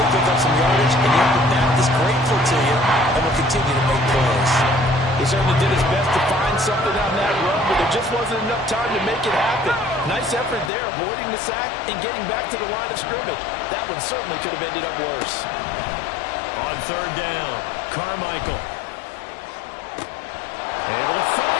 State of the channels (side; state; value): right; drops out; at 10.7 s